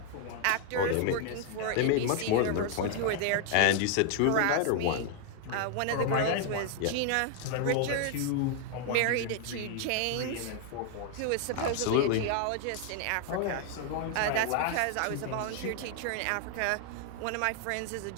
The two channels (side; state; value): both; different; correlation 0.00